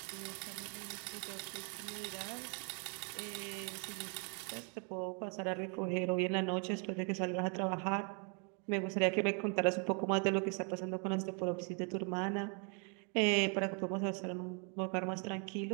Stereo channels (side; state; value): left; quieter; 37.7 dB